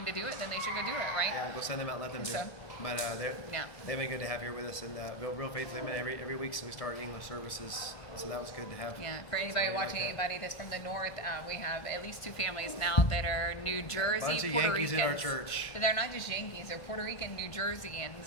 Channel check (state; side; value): late; right; 1.5 ms